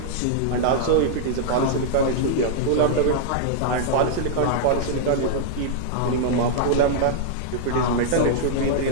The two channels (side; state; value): both; different; correlation -0.02